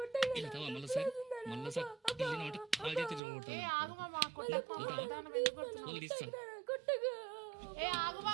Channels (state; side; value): drops out; left; at 3.2 s